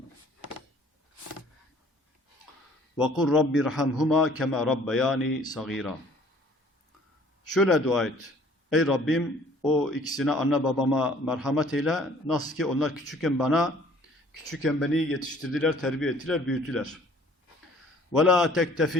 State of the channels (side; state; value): both; normal; correlation 0.55